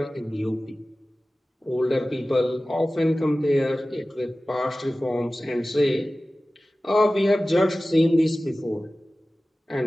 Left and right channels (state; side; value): normal; both; correlation 0.96